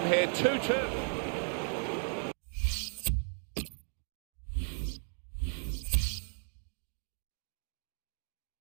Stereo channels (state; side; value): silent; left; 54 dB below the other